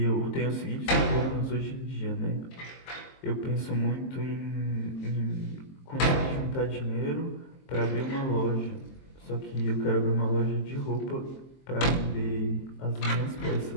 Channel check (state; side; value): late; right; 23 ms